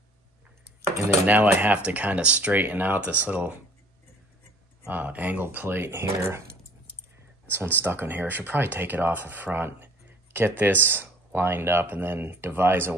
and then now I have to kind of straighten out this little angle plate here. This one's stuck on here. I should probably take it off the front, get this lined up, and then devise a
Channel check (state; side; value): normal; both; correlation 0.52